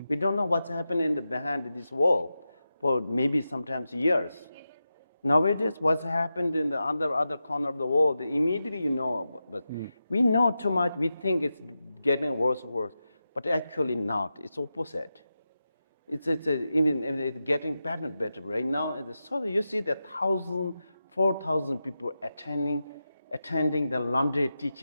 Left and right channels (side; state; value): both; inverted; correlation -0.91